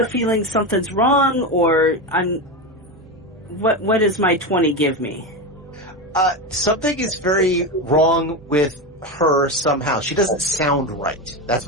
feeling something's wrong, or what does my 20 give me? Something is very wrong with her somehow. She doesn't sound right. That's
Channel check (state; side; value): normal; both; correlation 0.17